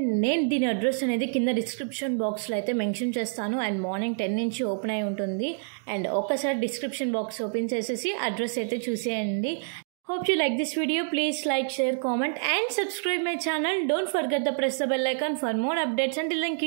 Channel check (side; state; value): left; silent; digital silence